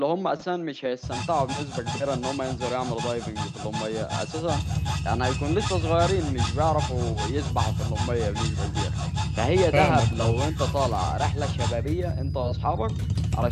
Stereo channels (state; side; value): identical; both; correlation 1.00